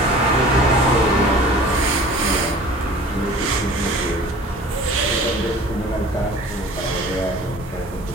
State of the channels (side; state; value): both; normal; correlation 0.44